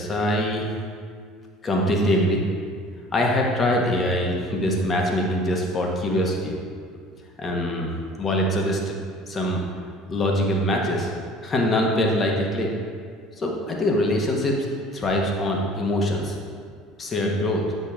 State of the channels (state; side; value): normal; both; correlation 0.49